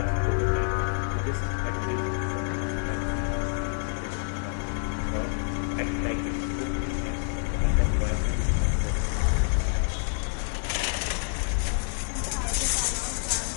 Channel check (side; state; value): right; silent; 60 dB below the other